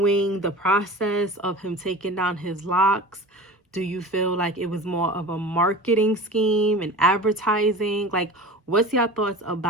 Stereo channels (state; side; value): normal; both; correlation 0.36